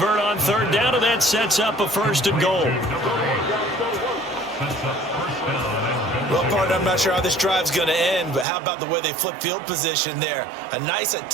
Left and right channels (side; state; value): left; drops out; at 8.5 s